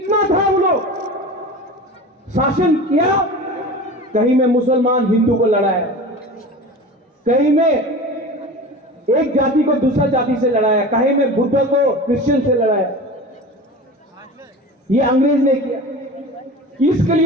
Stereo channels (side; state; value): both; normal; correlation 0.33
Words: था वो लोग शासन किया? कहीं में मुसलमान हिंदू को लड़ाया, कहीं में एक जाति को दूसरा जाति से लड़ाया, कहीं में बुद्ध को क्रिश्चियन से लड़ाया। ये अंग्रेज ने किया, इसके